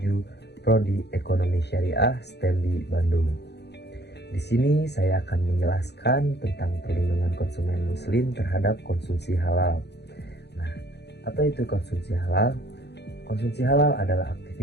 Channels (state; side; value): late; right; 0.49 ms